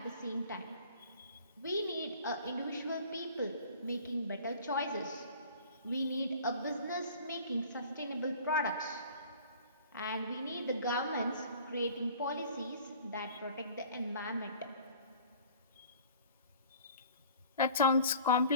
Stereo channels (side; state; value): both; inverted; correlation -0.47